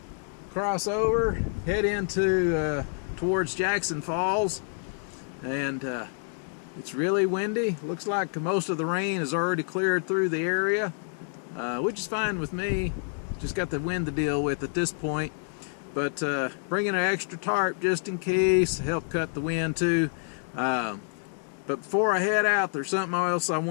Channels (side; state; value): right; silent; 59 dB below the other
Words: cross over, head into towards Jackson Falls, and it's really windy. Looks like most of the rain has already cleared through the area, which is fine with me. Just got the wind to deal with at this point, but bringing an extra tarp just in case to help cut the wind too. But before I head out, there's something else I